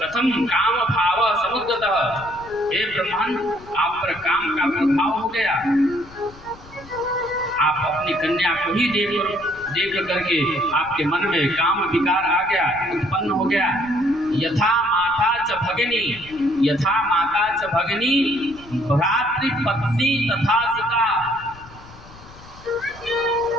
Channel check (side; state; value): left; noise; rumble, 20 dB below the sound